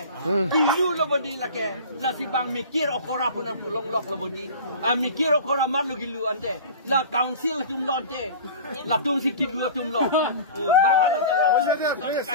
pilu lo bodi la ke la si bang mikir okora pun pulong lok lo bodi mikir okora mar lo gilu ante la council tum lonte la tum si kidu tum lo bang hala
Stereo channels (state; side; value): inverted; both; correlation -0.37